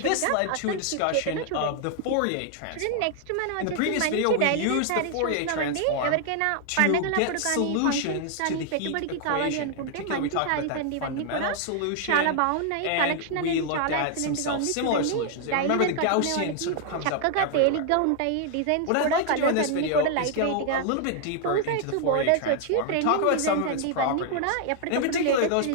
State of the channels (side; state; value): both; different; correlation 0.00